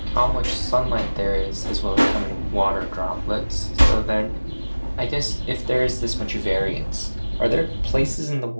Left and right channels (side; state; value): both; inverted; correlation -1.00